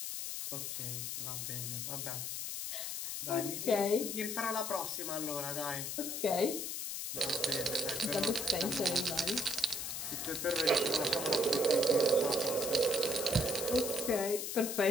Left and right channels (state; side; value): noise; left; hiss, 4 dB below the sound